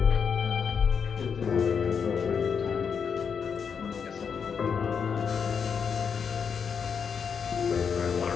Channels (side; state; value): right; quieter; 6.5 dB